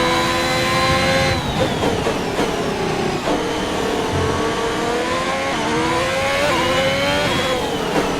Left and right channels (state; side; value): identical; both; correlation 1.00